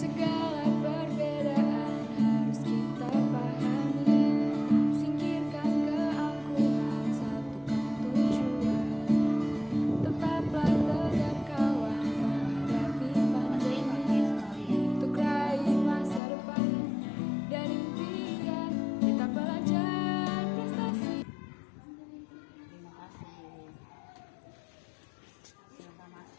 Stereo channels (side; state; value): right; drops out; at 16.2 s